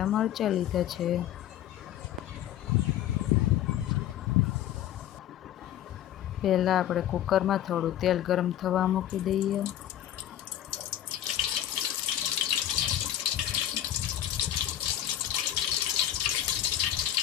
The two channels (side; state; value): right; quieter; 11.7 dB